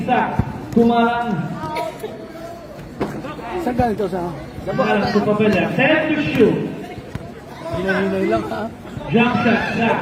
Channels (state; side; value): identical; both; correlation 1.00